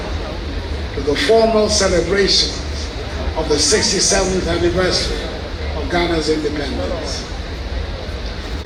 to the formal celebrations of the 67th anniversary of Ghana's independence.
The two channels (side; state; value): both; identical; correlation 1.00